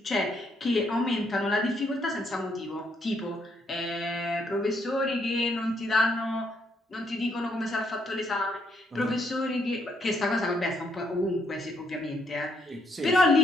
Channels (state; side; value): normal; both; correlation 0.73